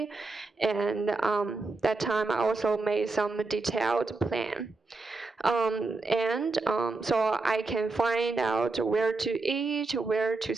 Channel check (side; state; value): left; quieter; 3.6 dB